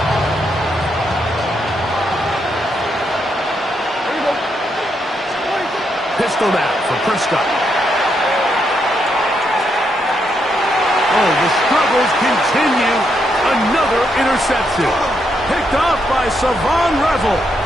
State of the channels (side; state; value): both; normal; correlation 0.79